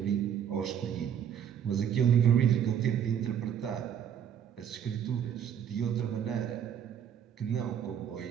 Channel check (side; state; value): left; quieter; 9.0 dB